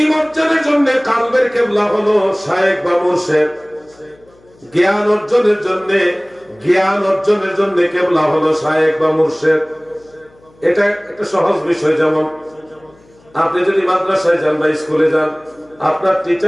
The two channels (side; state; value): left; noise; hum, 30 dB below the sound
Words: অর্জনের জন্য কালবের কেবলা হলো শায়েখ বা মুর্শিদ। জ্ঞান অর্জনের জন্য কেবলা হলো শায়েখ বা মুর্শিদ। এটা একটা সহজ বিষয়। যেমন আপনি যদি মাদ্রাসায় যান বা স্কুলে যান, আপনার